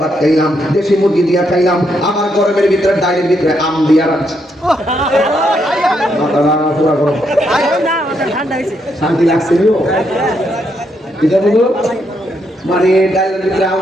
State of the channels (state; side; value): normal; both; correlation 0.77